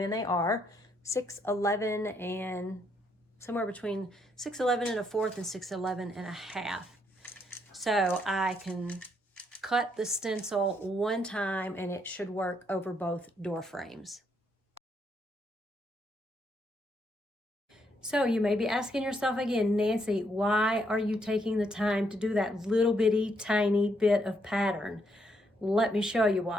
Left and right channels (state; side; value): normal; both; correlation 0.74